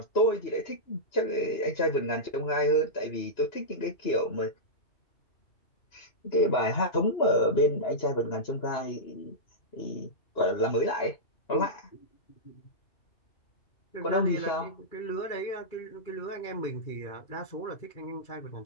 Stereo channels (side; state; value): right; late; 2.9 ms